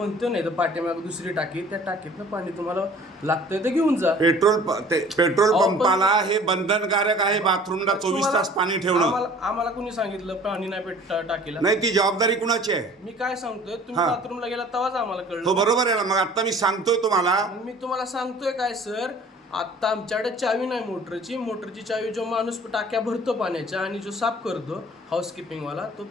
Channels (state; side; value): normal; both; correlation 0.49